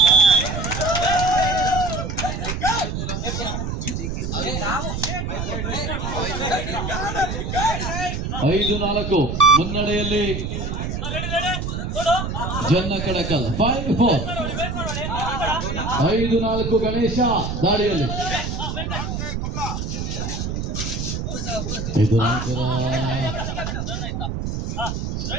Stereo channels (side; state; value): right; noise; rumble, 3 dB below the sound